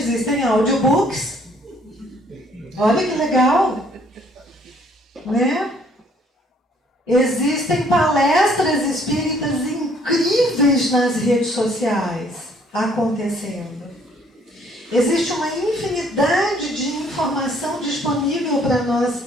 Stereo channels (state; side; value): normal; both; correlation 0.62